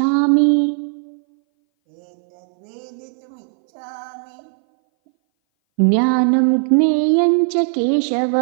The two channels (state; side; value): silent; left; 61 dB below the other